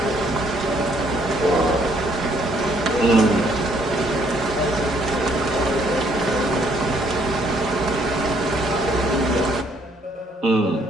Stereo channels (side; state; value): both; normal; correlation 0.66